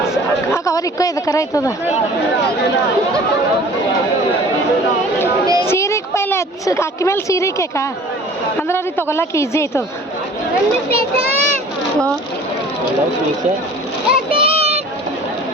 ಹಾಕ ಅವ್ರ ಇಕ್ಕೋ ಇದು ಕರ ಆಯ್ತದ. ಸೀರೆಗೆ ಪೈಲೆ ಅಕ್ಕಿ ಮೇಲೆ ಸೀರೆ ಕೇಕ ಅಂದ್ರೆ ಅವ್ರಿಗೆ ತೊಗೊಳಕ್ಕೆ ಈಸಿ ಆಯ್ತದ.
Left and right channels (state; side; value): normal; both; correlation 0.47